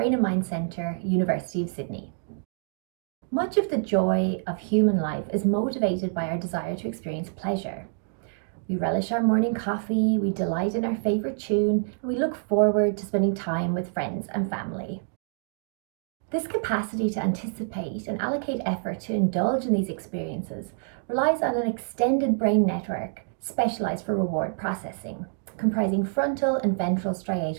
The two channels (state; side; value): silent; left; digital silence